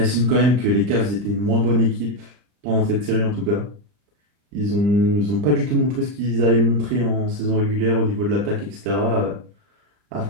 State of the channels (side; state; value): left; late; 39 ms